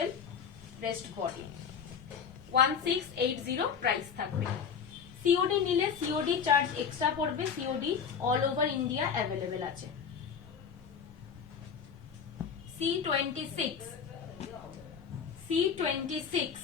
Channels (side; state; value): right; quieter; 6.8 dB